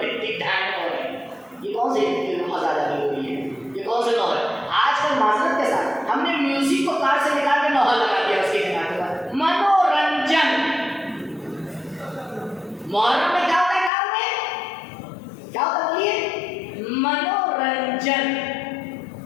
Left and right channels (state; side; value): drops out; right; at 13.9 s